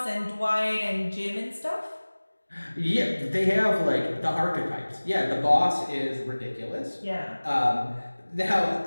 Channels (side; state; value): both; inverted; correlation -1.00